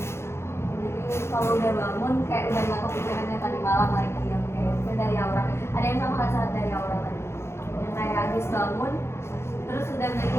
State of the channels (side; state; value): right; late; 0.12 ms